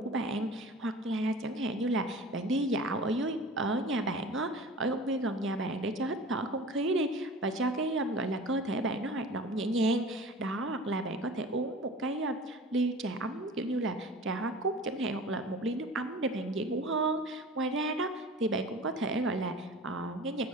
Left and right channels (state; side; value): normal; both; correlation 0.39